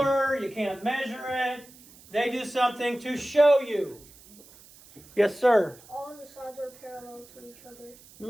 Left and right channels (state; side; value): noise; right; hiss, 23 dB below the sound